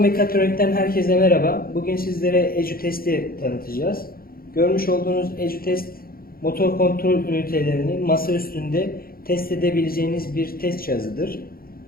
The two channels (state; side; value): late; right; 0.43 ms